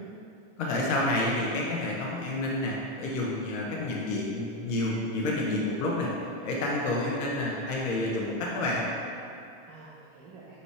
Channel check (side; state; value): left; late; 1.1 ms